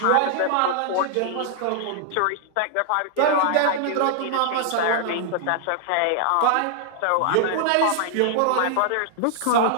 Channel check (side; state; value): both; different; correlation 0.00